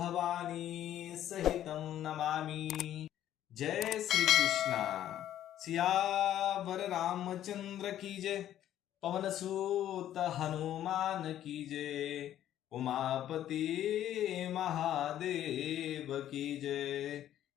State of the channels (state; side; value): quieter; right; 11.8 dB